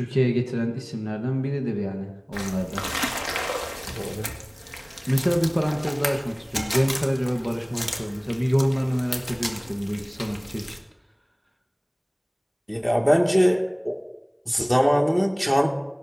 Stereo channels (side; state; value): both; identical; correlation 1.00